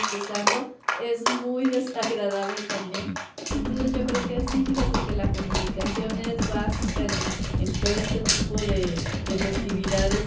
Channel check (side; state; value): both; identical; correlation 1.00